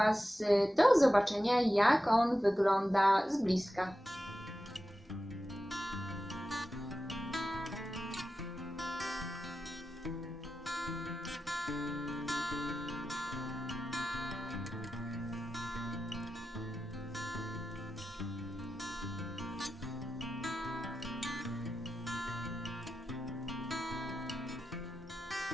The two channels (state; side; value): normal; both; correlation 0.92